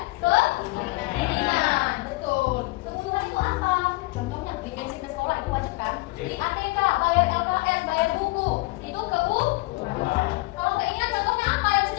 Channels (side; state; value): right; quieter; 22.3 dB